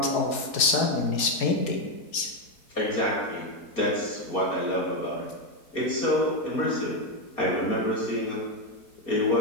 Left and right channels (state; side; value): late; right; 4.7 ms